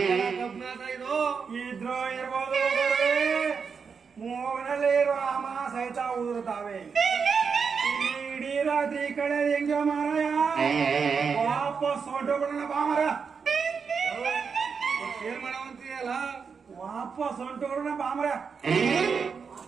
ಇದು ಇದ್ರು ಇರ್ಬೋದು. ಮೂಗನಲ್ಲಿ ಇರುವ ಅಮ ಸಹಿತ ಉದುರುತ್ತಾವೆ. ಇಡೀ ರಾತ್ರಿ ಕಡೆ ಹೆಂಗ ಮಾರಾಯ ವಾಪಸ್ ಹೊಂಟೋಗ್ಬಿಡೋಣ ಬಾ ಮರ. ಏನ್ ಮಾಡವಂತೀಯಲ್ಲ ವಾಪಸ್ ಹೊಂಟೋಗ್ಬಿಡೋಣ ಬಾ ಮರ.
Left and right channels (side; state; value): left; quieter; 5.8 dB